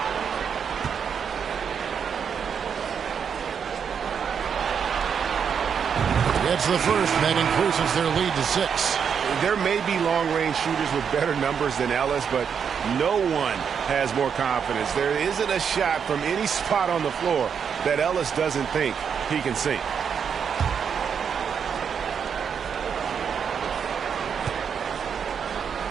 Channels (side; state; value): left; quieter; 7.1 dB